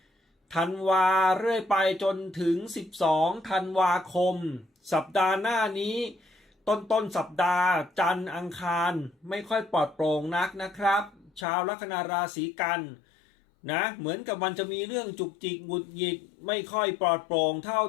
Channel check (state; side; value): drops out; right; at 11.5 s